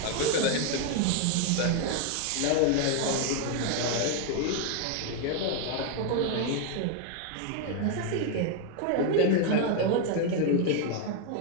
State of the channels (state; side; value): different; both; correlation 0.00